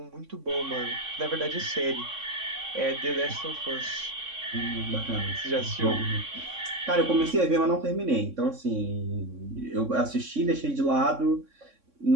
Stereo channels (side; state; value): left; late; 3.6 ms